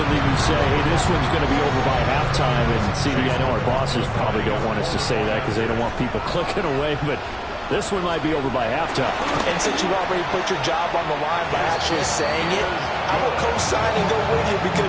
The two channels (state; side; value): identical; both; correlation 1.00